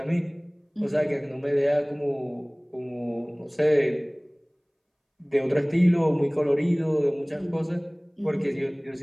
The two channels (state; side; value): identical; both; correlation 1.00